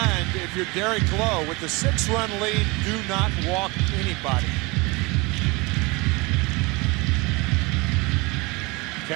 if you're Derek Lowe, with the 6-run lead, do not walk anybody.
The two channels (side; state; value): left; quieter; 25.6 dB